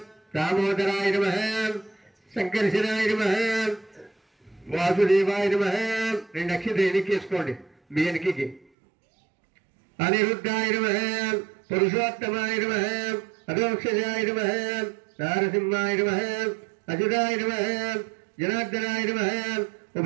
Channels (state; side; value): drops out; left; at 8.7 s